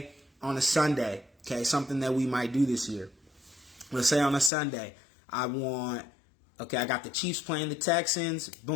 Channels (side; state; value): right; drops out; at 4.5 s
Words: on a Sunday, okay, something that we might do this year. Let's say on a Sunday, I got the Chiefs playing the Texans.